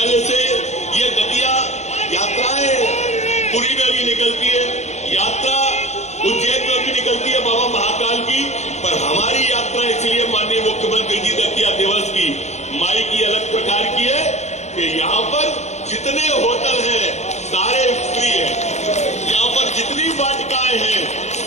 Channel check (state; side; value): late; right; 0.33 ms